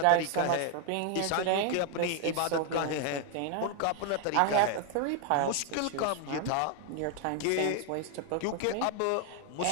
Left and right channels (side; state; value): both; different; correlation 0.01